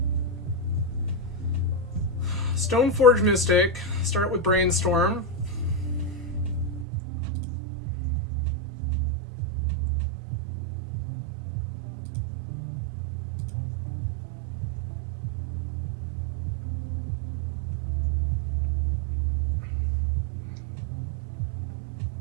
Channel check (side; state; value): left; drops out; at 6.9 s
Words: Stoneforge Mystic. Start with Brainstorm.